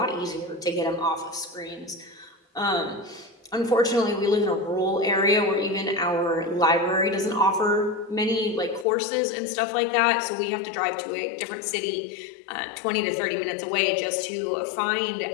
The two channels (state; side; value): drops out; right; at 8.8 s